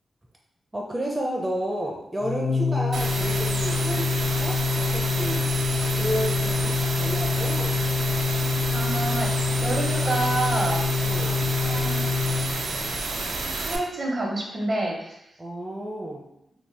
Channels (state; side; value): normal; both; correlation 0.82